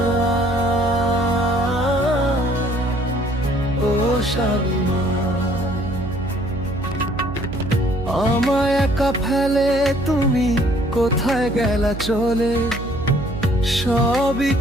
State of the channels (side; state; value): right; noise; hum, 9 dB below the sound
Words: ও শামিমা, আমায় একা ফেলে তুমি কোথায় গেলা চলে? সবই